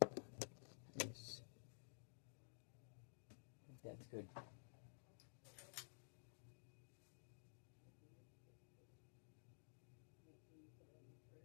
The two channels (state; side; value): silent; right; digital silence